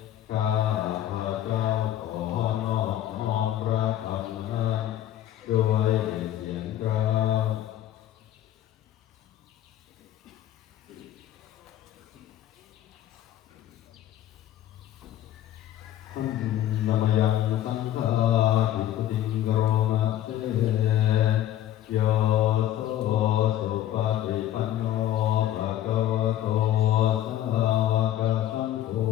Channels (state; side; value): quieter; right; 12.4 dB